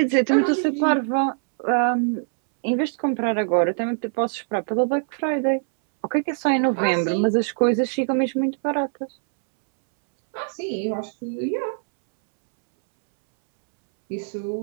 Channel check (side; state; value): left; silent; 64 dB below the other